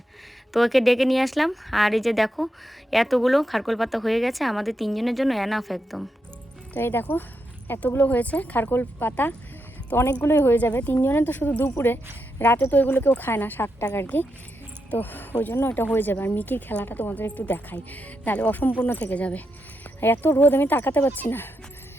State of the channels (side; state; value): both; normal; correlation 0.84